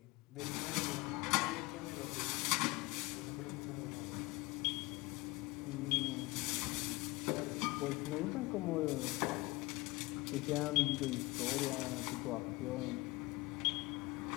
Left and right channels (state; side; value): quieter; right; 22.4 dB